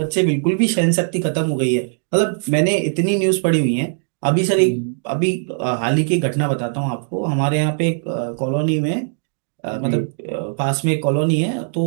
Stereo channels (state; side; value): silent; left; digital silence